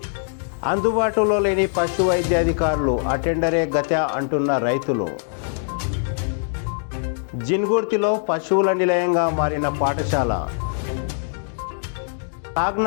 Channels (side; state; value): right; silent; digital silence